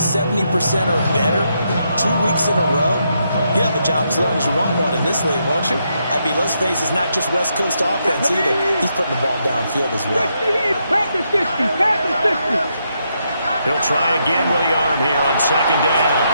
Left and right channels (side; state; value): both; inverted; correlation -0.79